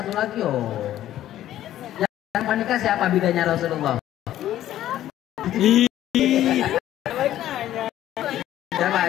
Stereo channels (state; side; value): quieter; right; 12.8 dB